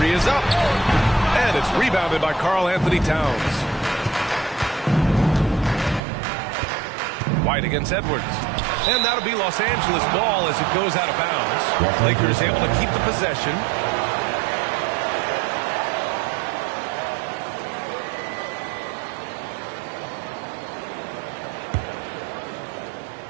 is up. And it's rebounded by Karl Anthony Towns. White against Edwards. And that'll be Los Angeles ball as it goes out of bounds. Lakers able to keep the possession.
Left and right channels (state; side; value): drops out; left; at 6.0 s